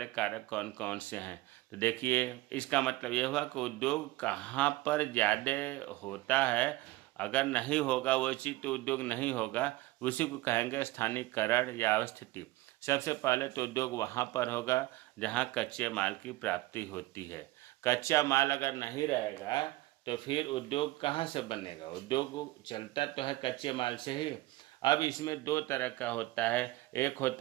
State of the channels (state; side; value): quieter; left; 18.6 dB